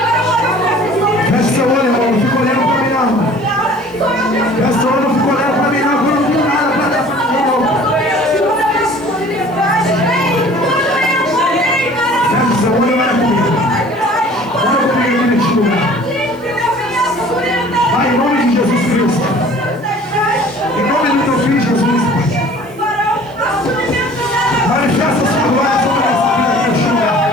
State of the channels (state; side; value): noise; right; hiss, 29 dB below the sound